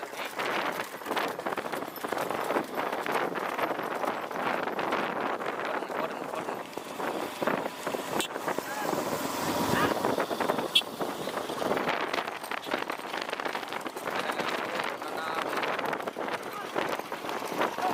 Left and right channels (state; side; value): identical; both; correlation 1.00